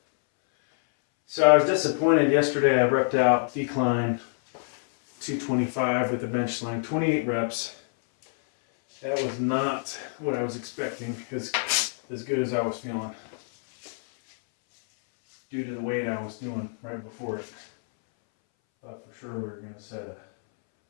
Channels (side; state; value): right; silent; 61 dB below the other